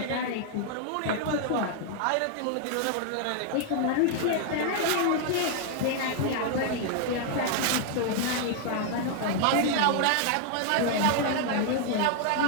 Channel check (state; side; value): different; both; correlation 0.00